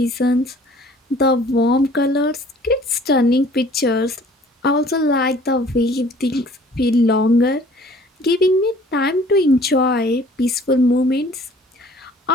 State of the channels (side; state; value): both; normal; correlation 0.53